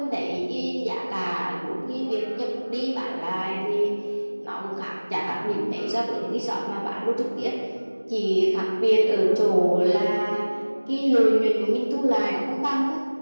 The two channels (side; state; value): both; inverted; correlation -1.00